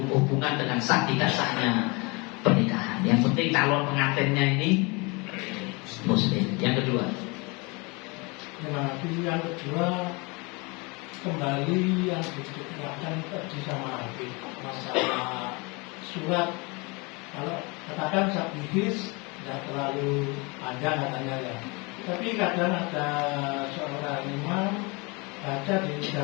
hubungan dengan sah tidak sahnya pernikahan. Yang penting calon pengantinnya ini muslim. Yang kedua, yang kedua kembali yang diterangkan tadi sama Habib masalah surat. Kalau katakan sabihis tidak terlalu panjang katanya ya. Tapi kadang ada seorang imam baca di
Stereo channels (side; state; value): right; quieter; 28.0 dB